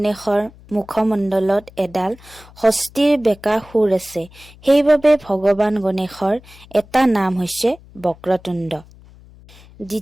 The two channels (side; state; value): left; noise; hum, 23 dB below the sound